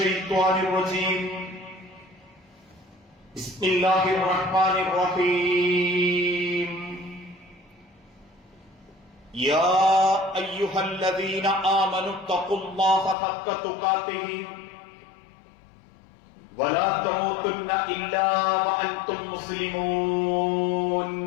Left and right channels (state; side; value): drops out; right; at 13.2 s